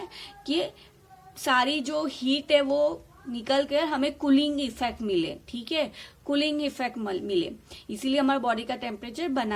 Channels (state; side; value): identical; both; correlation 1.00